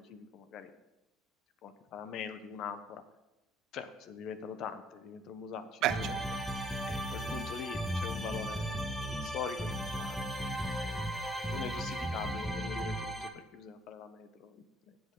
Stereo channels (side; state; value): both; normal; correlation 0.63